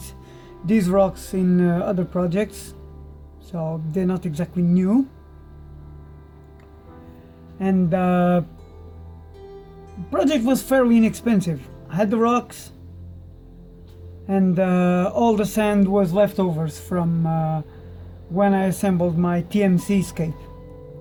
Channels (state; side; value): identical; both; correlation 1.00